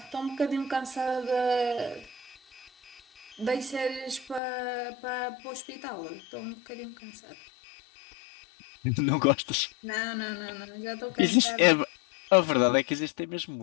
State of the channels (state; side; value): drops out; right; at 4.4 s